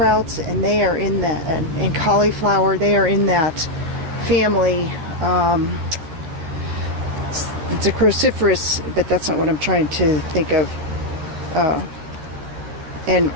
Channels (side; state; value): left; late; 13 ms